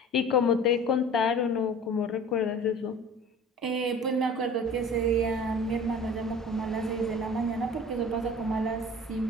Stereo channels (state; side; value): normal; both; correlation 0.42